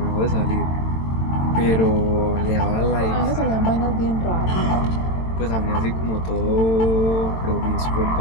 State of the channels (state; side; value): late; right; 22 ms